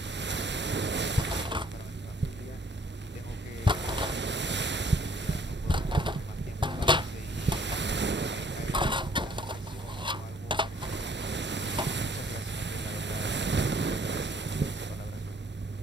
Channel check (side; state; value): both; normal; correlation 0.60